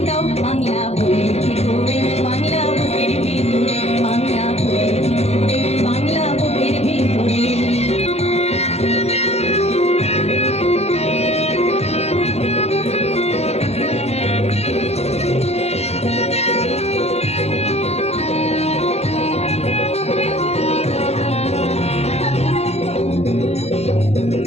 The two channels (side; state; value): right; late; 0.31 ms